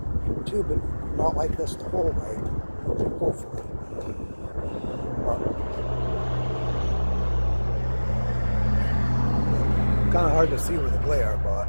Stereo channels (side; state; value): both; inverted; correlation -1.00